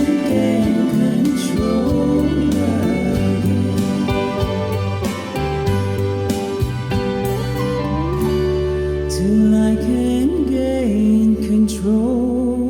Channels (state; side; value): identical; both; correlation 1.00